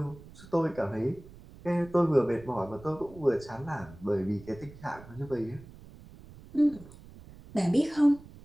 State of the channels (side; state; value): right; noise; rumble, 19 dB below the sound